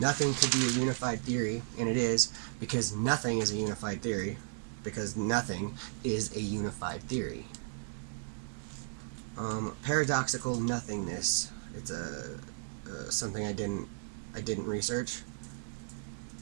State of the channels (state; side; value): silent; left; digital silence